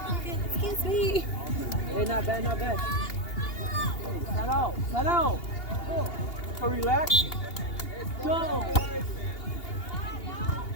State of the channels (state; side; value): late; right; 2.8 ms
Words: Excuse me. Hey, not bad, not bad. Hey, set out. So relax. Go.